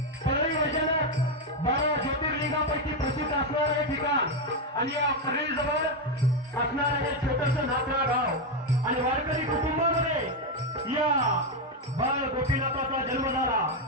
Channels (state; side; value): normal; both; correlation 0.06